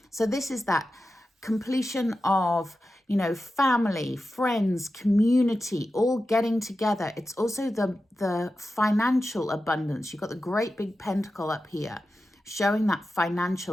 So this is that completion of, you know, family, friends, community, all getting together. It's also the financial abundance. You've got the great big pentacle up here showing that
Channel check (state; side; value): normal; both; correlation 0.92